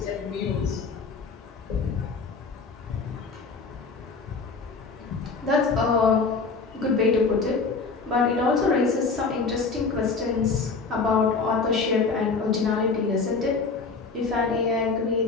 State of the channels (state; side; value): quieter; right; 4.5 dB